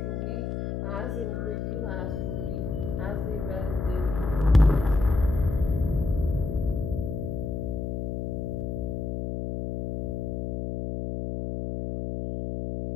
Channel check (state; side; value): noise; left; hum, 3 dB below the sound